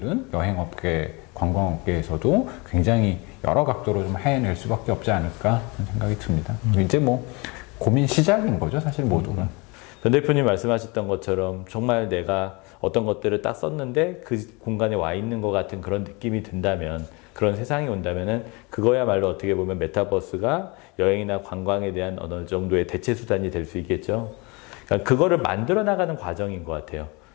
여행업계, 관광업계에서도 굉장히 여러 각도로 좀 해낼 수밖에 없지 않을까 하는 생각이 듭니다. 이제 뭐 고민 시작인 거죠, 사실 모두가. 변 대표님 말씀하셨던 것처럼 정말 내가 어떤 것들을 딱 썼는데 그 공간에 와 있는 것 같은 그런 느낌이 든다면, 그런 세상이 온다면은 그거야말로 어떻게 보면 메타버스가 여행이나 관광에 대한 어느 정도의 대체 수단이 될 수 있겠죠. 그러니까 그거를 만들어 나가는 과정인 것 같아요.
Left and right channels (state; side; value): quieter; right; 27.7 dB